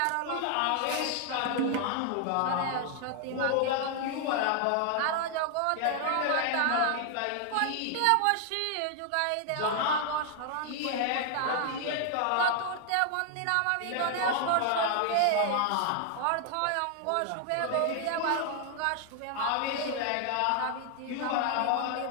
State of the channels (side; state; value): both; different; correlation 0.00